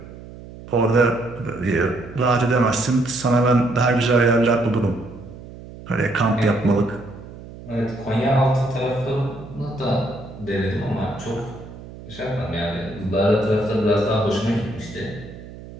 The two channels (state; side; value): noise; right; hum, 16 dB below the sound